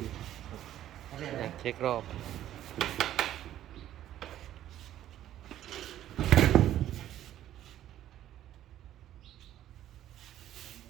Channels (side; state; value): left; quieter; 12.3 dB